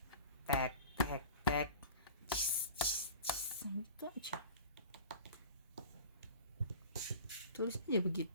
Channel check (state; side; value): inverted; both; correlation -0.39